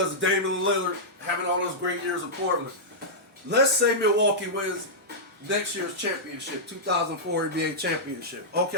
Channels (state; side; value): normal; both; correlation -0.10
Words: of Damian Lillard having all those great years in Portland. Let's say Milwaukee wins next year's championship, 2004 NBA championship.